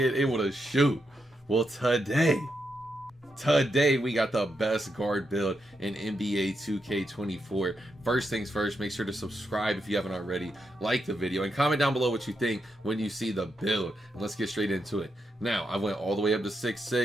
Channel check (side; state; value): both; normal; correlation 0.83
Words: able to shoot? Well, today we got the best guard build in NBA 2K24. First things first, make sure to subscribe if you haven't already, like the video, and comment down below what you think when you see the build. And let's get straight into it. Now, I went all the way up to